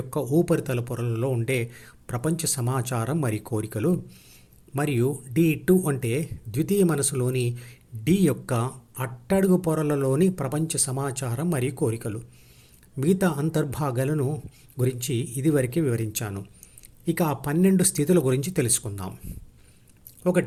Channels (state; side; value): identical; both; correlation 1.00